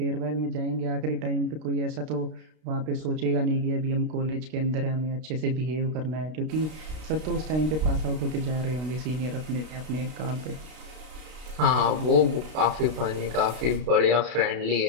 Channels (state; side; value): late; left; 32 ms